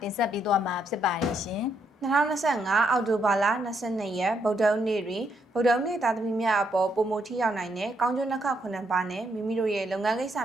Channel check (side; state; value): both; normal; correlation 0.75